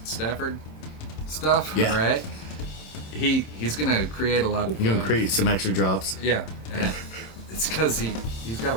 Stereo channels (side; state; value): right; late; 27 ms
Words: Stafford stuff, Yeah. right? He's going to create a lot of... You're gonna create some extra drops. Yeah, and it's because he's got a